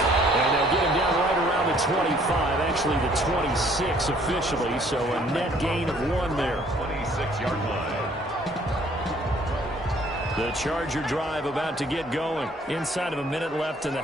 And they'll get him down right around the 25, actually the 26 officially, so a net gain of 1 there. 26-yard line. The Charger drive about to get going. Inside of a minute left in the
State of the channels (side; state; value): both; normal; correlation 0.60